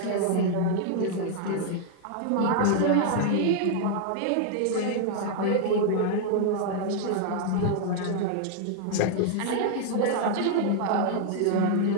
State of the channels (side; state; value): both; different; correlation 0.00